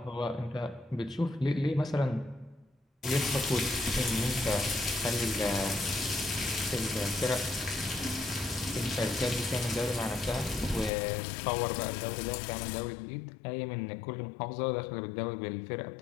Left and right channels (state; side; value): drops out; right; at 10.9 s